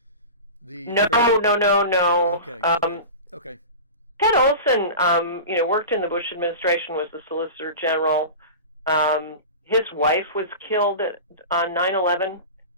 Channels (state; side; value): inverted; both; correlation -0.30